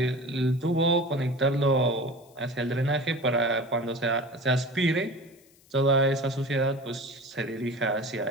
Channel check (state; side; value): noise; left; hiss, 29 dB below the sound